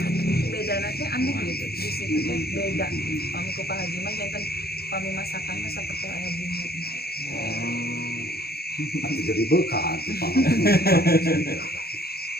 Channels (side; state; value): right; late; 0.46 ms